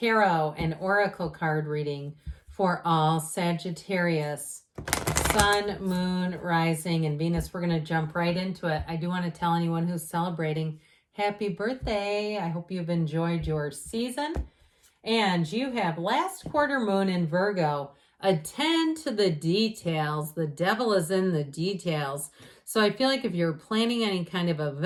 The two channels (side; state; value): both; identical; correlation 1.00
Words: and oracle card reading for all Sagittarius, Sun, Moon, Rising, and Venus. We're going to jump right into it. I do want to tell anyone who's celebrating happy birthday. I hope you've enjoyed your season. And you have last quarter moon in Virgo. Attend to the details. The devil is in the details. So I feel like if you're planning any kind of